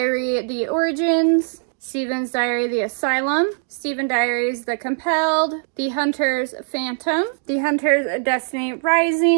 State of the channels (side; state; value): left; silent; 60 dB below the other